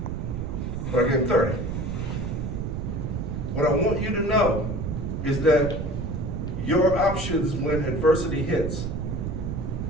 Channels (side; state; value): right; noise; rumble, 3 dB below the sound